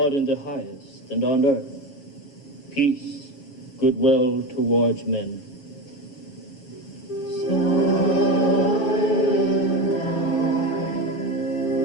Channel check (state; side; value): late; right; 7.3 ms